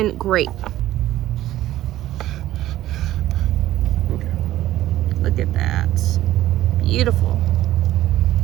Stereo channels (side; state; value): left; quieter; 14.3 dB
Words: great. Look at that. Beautiful.